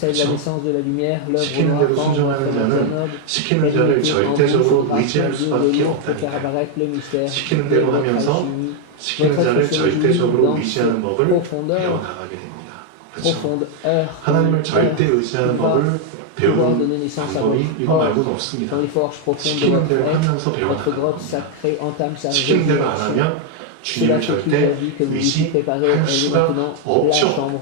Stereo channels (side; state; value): both; different; correlation 0.00